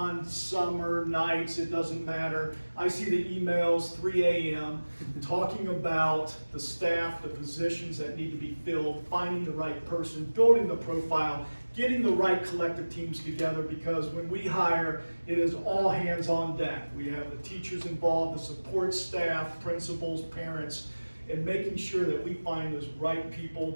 summer, nights, it doesn't matter. I see the emails 3 a.m. talking about the staff, the positions that need to be filled, finding the right person, building the profile, getting the right collective teams together, because when we hire, it is all hands on deck. We have the teachers involved, the support staff, principals, parents, and making sure that we find those right people.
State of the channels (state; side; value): inverted; both; correlation -1.00